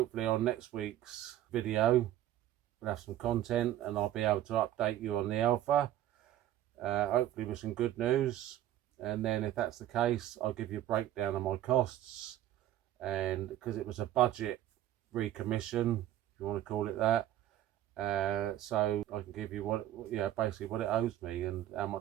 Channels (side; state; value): left; quieter; 12.8 dB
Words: on next week's video we'll have some content and I'll be able to update you on the Alpha, hopefully with some good news. And then if that's the case, I'll give you a breakdown of my costs, and because it was a budget recommission, if you want to call it that, so I can give you basically what it owes me and how